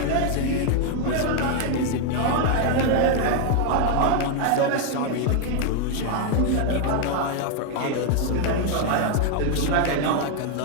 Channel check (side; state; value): both; different; correlation 0.00